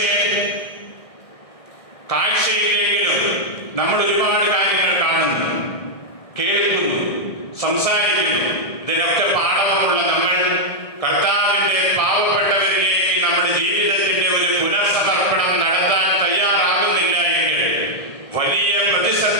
കാഴ്ചയില്ലെങ്കിലും നമ്മൾ ഒരുപാട് കാര്യങ്ങൾ കാണുന്നു, കേൾക്കുന്നു, സംസാരിക്കുന്നു. ഇതിനൊക്കെ പാഠവുമുള്ള നമ്മൾ കർത്താവിന്റെ പാവപ്പെട്ടവരിലേക്ക് നമ്മുടെ ജീവിതത്തിന്റെ ഒരു പുനർസമർപ്പണം നടത്താൻ തയ്യാറാകുന്നില്ല എങ്കിൽ വലിയ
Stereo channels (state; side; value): late; right; 1.6 ms